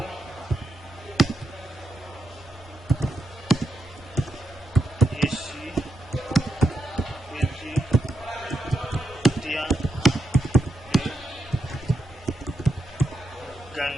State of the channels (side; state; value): both; normal; correlation 0.85